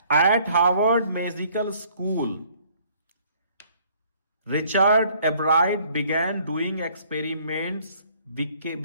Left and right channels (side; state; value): both; inverted; correlation -0.60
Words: Eight Harvard medical school Richard एब्राइट began doing experiments